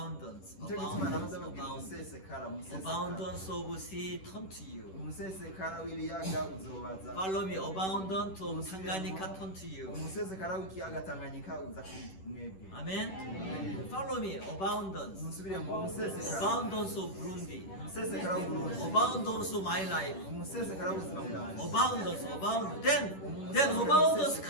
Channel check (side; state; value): right; late; 10 ms